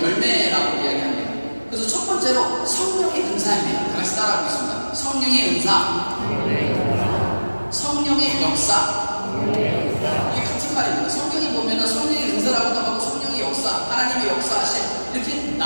열매라고 이야기합니다. 그래서 첫 번째로 성령의 은사입니다. 같이 따라하겠습니다. 성령의 은사, 성령의 역사. 이게 같은 말입니다. 성경에 보면 성령의 은사라고도 하고 성령의 역사, 하나님의 역사하심 이렇게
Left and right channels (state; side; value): inverted; both; correlation -1.00